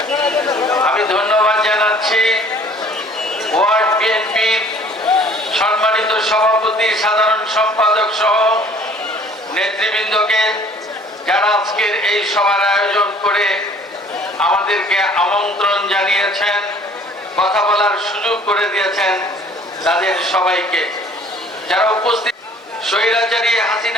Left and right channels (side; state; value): both; normal; correlation 0.53